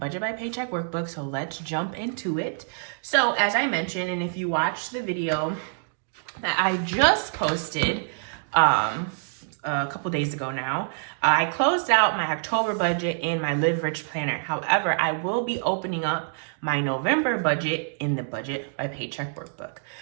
by Paycheck workbook, so let's jump into it. So as I mentioned, and if you watched the video that I just posted a couple days ago now, I closed out my October budget in my Live Rich planner. However, I will be opening up my November budget in the Budget by Paycheck workbook.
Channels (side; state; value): left; silent; digital silence